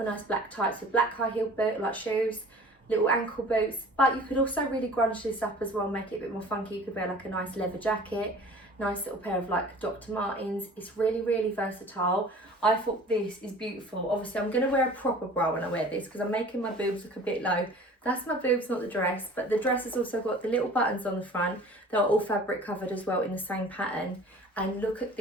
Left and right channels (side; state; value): both; normal; correlation 0.45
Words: nice black tights with black high heel boot, like shoes, little ankle boots. But you could also really grunge this up as well, make it a bit more funky. You could wear like a nice leather jacket, nice little pair of like Dr. Martens. It's really, really versatile. I thought this is beautiful. Obviously I'm going to wear a proper bra when I wear this because I'm making my boobs look a bit low. That's my boobs, not the dress, but the dress has also got the little buttons on the front. They're all fabric covered as well in the same pattern. And look at